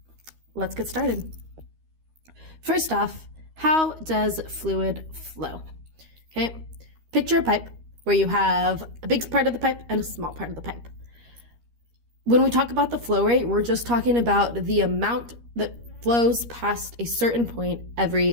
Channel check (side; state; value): left; late; 13 ms